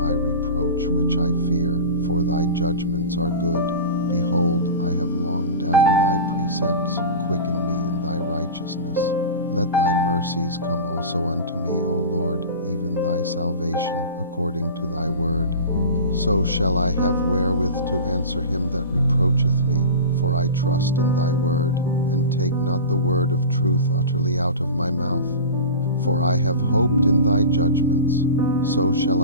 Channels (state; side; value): inverted; both; correlation -0.31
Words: reproach which I fear, for thy judgments are good. Behold, I have longed after thy precepts. Quicken me in thy righteousness. Let thy mercies come also unto me, O Lord, even thy salvation, according to thy word. So shall I have wherewith to answer him that reproacheth me, for I trust in thy word, and take not the word of truth utterly out of my mouth. For I have hoped in thy judgments. So shall